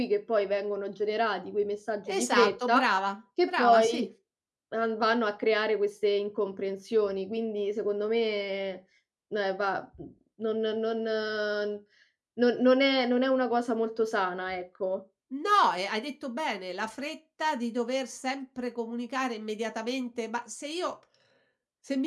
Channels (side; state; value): both; identical; correlation 1.00